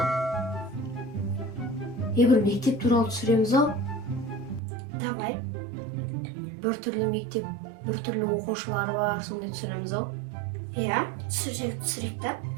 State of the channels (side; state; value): left; drops out; at 4.6 s